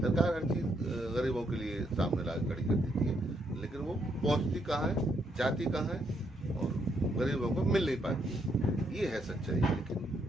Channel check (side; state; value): both; normal; correlation 0.75